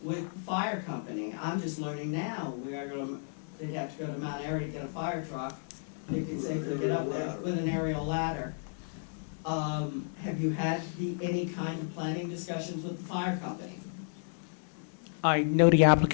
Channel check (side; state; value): right; silent; digital silence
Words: with the fire company? I'm just learning now. They'd have to go to Mount Airy to get a fire truck. They could safely get up there with an aerial ladder. Have you had any kind of planning discussions with the fire company? I know the